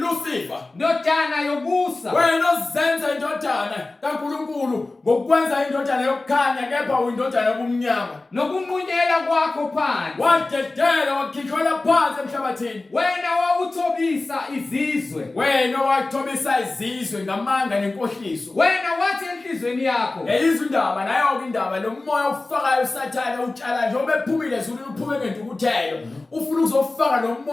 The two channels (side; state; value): right; quieter; 3.2 dB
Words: Ndodana yobusa. Wena ozenza indodana kaNkulunkulu ngokwenza indodana yokukhanya kepha uyindodana yobumnyama. Nokunqunyela kwakho phansi. Wadedela wakhithela phansi emhlabathini. Wena wawuthobisa izizwe. Wena wathobisa izizwe ngamanga nenkohliso. Wena wathi enhlizweni yakho. Yeyizwe indaba nayo ke indaba lo moya ofakayo uSathane utshala njengoba ephumile ezulwini uphume ngentukuthelo. Ufuna ukuzofaka lo